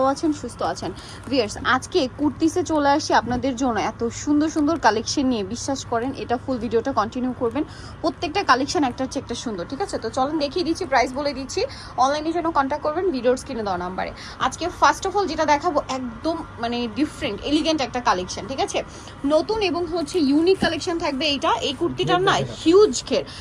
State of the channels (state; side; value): identical; both; correlation 1.00